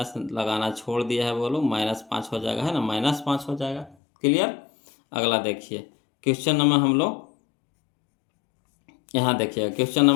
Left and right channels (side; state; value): right; drops out; at 4.0 s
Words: लगाना छोड़ दिया है, बोलो -5 हो जाएगा, है ना, -5 हो जाएगा। क्लियर। अगला देखिए क्वेश्चन नंबर हम लोग यहाँ देखिए क्वेश्चन